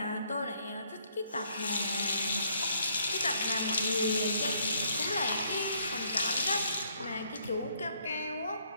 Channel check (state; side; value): inverted; both; correlation -0.67